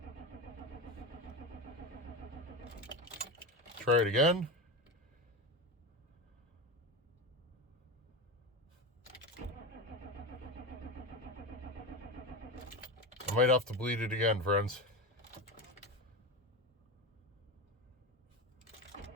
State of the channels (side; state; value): both; normal; correlation 0.20